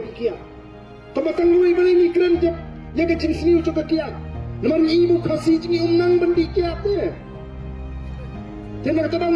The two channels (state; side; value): identical; both; correlation 1.00